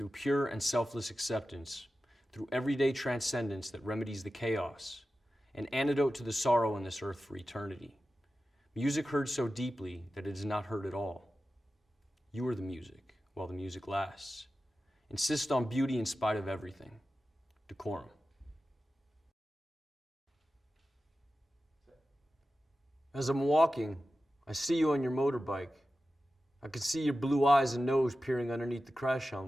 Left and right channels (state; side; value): normal; both; correlation 0.93